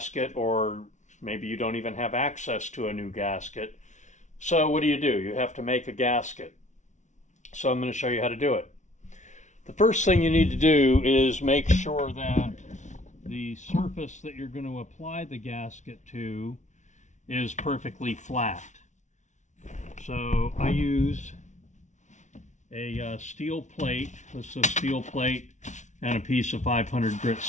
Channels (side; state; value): right; late; 0.35 ms